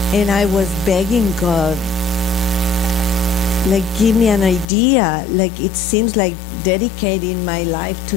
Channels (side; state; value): right; drops out; at 4.7 s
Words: And I was begging God, like, give me an idea. Like, it seems like dedicating my life to